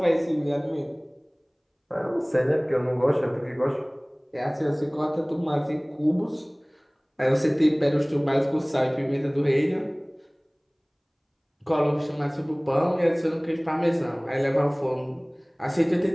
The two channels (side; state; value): both; identical; correlation 1.00